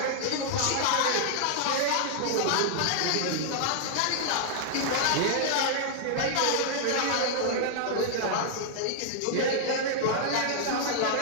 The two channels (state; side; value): different; both; correlation -0.01